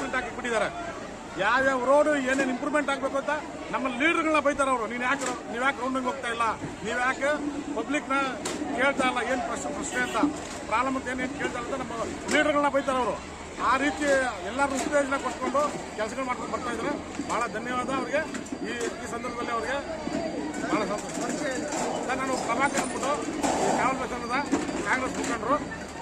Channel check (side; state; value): both; identical; correlation 1.00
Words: ಪ್ರಿಂಟ್ ಹಾಕಿಬಿಟ್ಟಿದ್ದಾರೆ. ಯಾವ್ಯಾವ ರೋಡು ಏನೇನು ಇಂಪ್ರೂವ್ಮೆಂಟ್ ಆಗಬೇಕು ಅಂತ ನಮ್ಮ ಲೀಡರ್ಗಳನ್ನ ಬೈತಾರೆ ಅವರು. ನೀವು ಯಾಕೆ ರೌಂಡಿಂಗ್ ಹೋಗ್ತಾ ಇಲ್ಲ, ನೀವು ಯಾಕೆ ಪಬ್ಲಿಕ್ನ ಕೇಳ್ತಾ ಇಲ್ಲ, ಏನು ಪ್ರಶ್ನೆ ಅಂತ ಪ್ರಾಬ್ಲಮ್ ಅಂತ ಏನೇನು ಕೇಳ್ತಾ ಇಲ್ಲ ಅಂತ ನಮ್ಮ ಲೀಡರ್ಗಳನ್ನ ಬೈತಾರೆ ಅವರು. ಆ ರೀತಿ ಎಲ್ಲರೂ ಉತ್ತೇಜನ ಕೊಟ್ಕೊಂಡು ಕೆಲಸಗಳು ಮಾಡ್ಕೊಂಡು ಬರ್ತಾ ಇದ್ದಾರೆ. ಭಾಳ ಧನ್ಯವಾದ ಅವರಿಗೆ. ಈ ಸಂದರ್ಭದಲ್ಲಿ ಅವರಿಗೆ ಭಾಳ ಸಂತೋಷ. ಸರ್, ನಾನು ಪ್ರಭಾಕರ್ ಅಂದ್ಬಿಟ್ಟು ಕಾವಲ್ ಬಸವನದ ಕಾಂಗ್ರೆಸ್ ಮುಖಂಡರು.